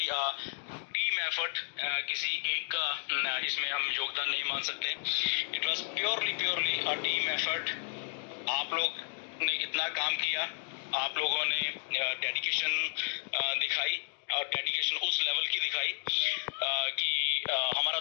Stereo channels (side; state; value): right; silent; 56 dB below the other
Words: team effort. किसी एक का इसमें हम योगदान नहीं मान सकते। It was purely a team effort. आप लोग ने इतना काम किया, आप लोगों ने डेडिकेशन दिखाई, और डेडिकेशन उस लेवल की दिखाई कि हमारा